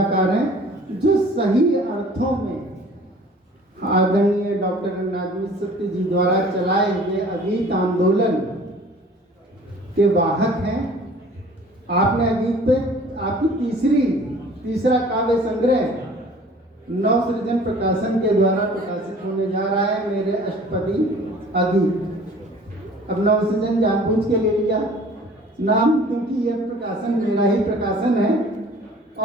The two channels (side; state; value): both; normal; correlation 0.49